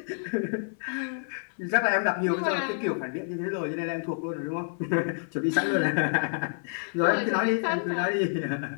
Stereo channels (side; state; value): right; silent; 59 dB below the other